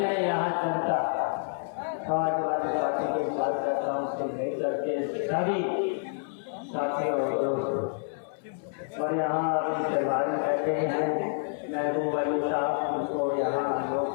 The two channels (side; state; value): right; silent; 59 dB below the other